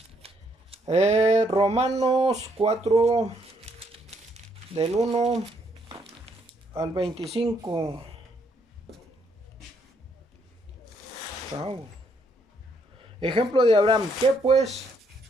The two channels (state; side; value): normal; both; correlation 0.72